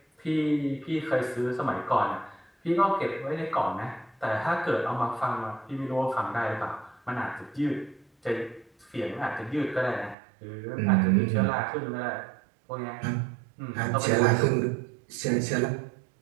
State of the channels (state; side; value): drops out; left; at 10.2 s